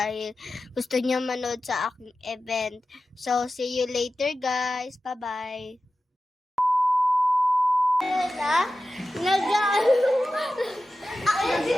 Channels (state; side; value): normal; both; correlation 0.94